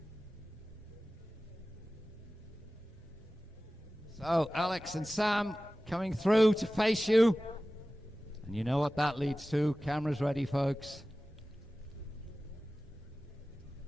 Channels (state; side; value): normal; both; correlation 0.96